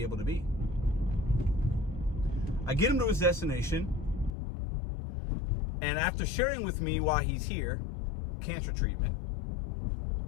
able to be. I get him to his destination, and after sharing with me why he's here, cancer treatment,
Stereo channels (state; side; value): drops out; right; at 4.3 s